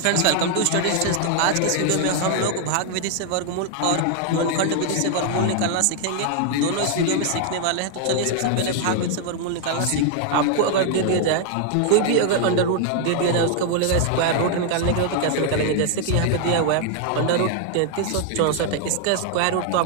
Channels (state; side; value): different; both; correlation 0.00